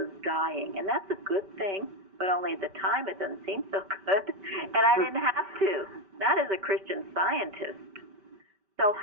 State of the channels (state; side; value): late; left; 5.2 ms